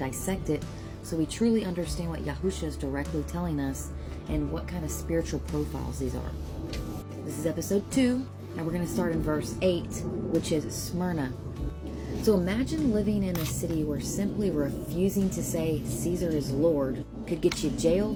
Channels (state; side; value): identical; both; correlation 1.00